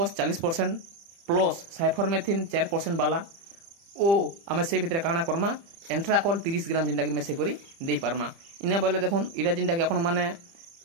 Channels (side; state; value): left; late; 30 ms